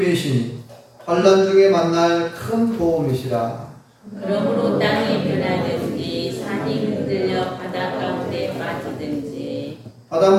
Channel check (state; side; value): identical; both; correlation 1.00